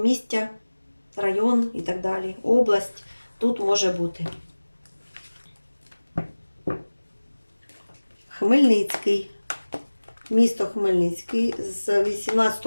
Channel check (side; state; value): both; inverted; correlation -1.00